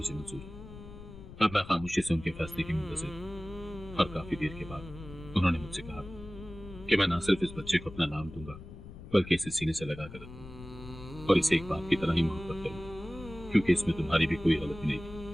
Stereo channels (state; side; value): noise; left; rumble, 15 dB below the sound